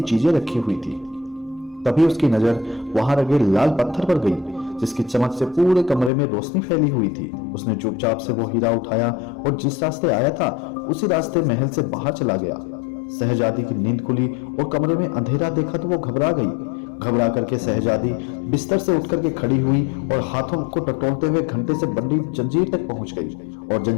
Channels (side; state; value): right; drops out; at 6.1 s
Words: चीजें रखी हुई थी। तभी उसकी नजर वहां लगे लाल पत्थर पर गई जिसकी चमक से पूरे कमरे में रोशनी फैली हुई थी। उसने चुपचाप से वो हीरा उठाया और जिस रास्ते आया था उसी रास्ते महल से बाहर चला गया। शहजादी की नींद खुली और कमरे में अंधेरा देखा तो वो घबरा गई। घबरा करके शहजादी बिस्तर से उठ करके खड़ी हुई और हाथों को टटोलते हुए घंटे से बंधी जंजीर तक पहुंच गई और